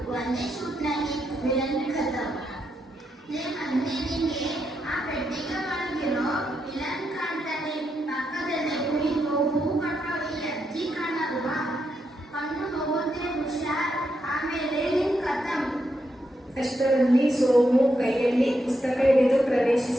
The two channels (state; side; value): normal; both; correlation 0.82